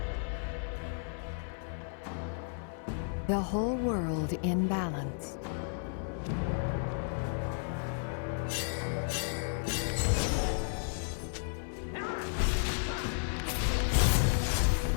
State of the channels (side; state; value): right; silent; 56 dB below the other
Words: The whole world in balance.